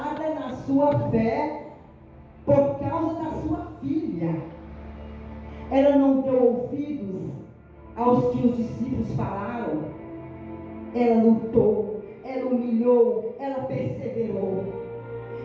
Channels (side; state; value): both; identical; correlation 1.00